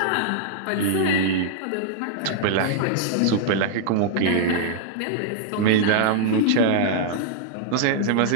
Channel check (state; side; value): different; both; correlation -0.01